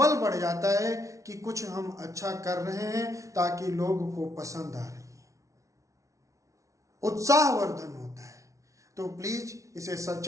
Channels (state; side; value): late; left; 0.15 ms